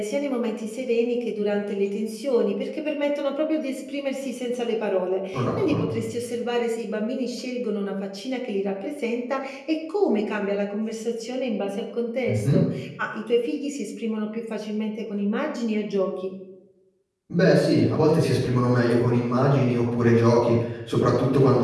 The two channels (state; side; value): identical; both; correlation 1.00